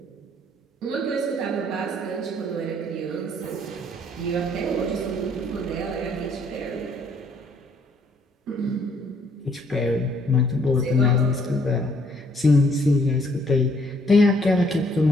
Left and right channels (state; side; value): normal; both; correlation 0.65